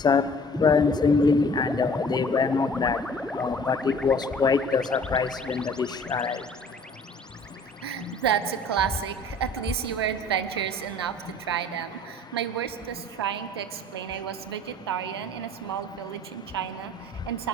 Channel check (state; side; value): normal; both; correlation 0.50